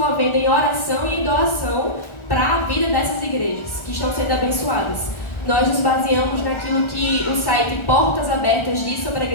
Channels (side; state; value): right; late; 1.4 ms